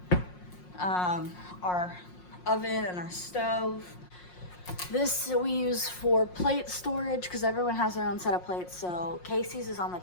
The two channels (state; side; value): late; right; 5.6 ms